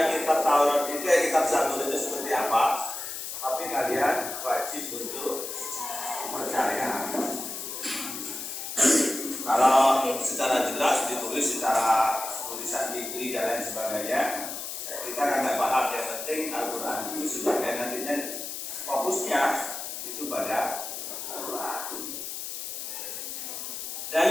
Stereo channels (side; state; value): left; noise; hiss, 6 dB below the sound